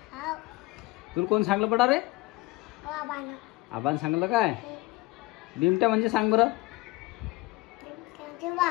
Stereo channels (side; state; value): right; quieter; 21.4 dB